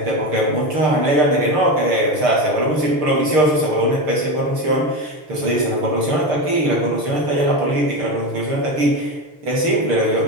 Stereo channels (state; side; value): late; left; 6.6 ms